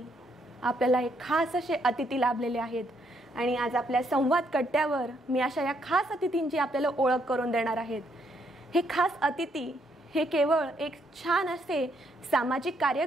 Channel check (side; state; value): both; normal; correlation 0.73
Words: आपल्याला एक खास असे अतिथी लाभलेले आहेत आणि आज आपल्या संवाद कट्ट्यावर मी अशा या खास अतिथींची आपल्याला ओळख करून देणार आहेत. हे खास अतिथी हे केवळ एक छान असे सामाजिक